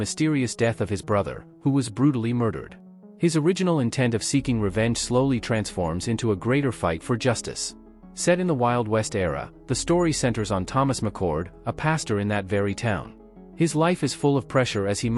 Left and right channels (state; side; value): identical; both; correlation 1.00